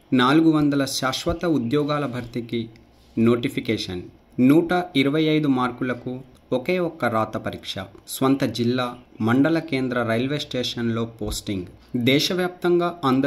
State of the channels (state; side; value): identical; both; correlation 1.00